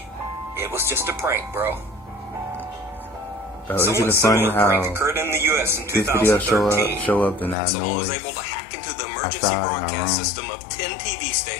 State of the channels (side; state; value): right; drops out; at 7.6 s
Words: it was just a prank, bro. Isn't Somewhat it funny similar prank how occurred in the U.S. in this video 2013. show up and that Someone was noise able to hack into the emergency outside in our broadcast room. system of 10 TV